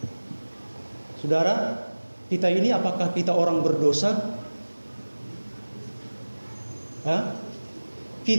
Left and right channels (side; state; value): both; inverted; correlation -1.00